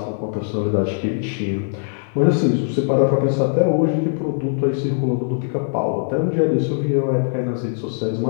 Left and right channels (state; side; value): silent; right; digital silence